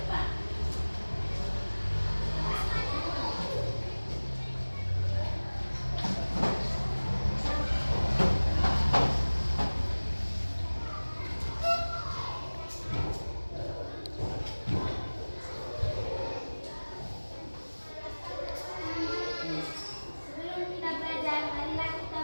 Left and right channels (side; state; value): both; inverted; correlation -1.00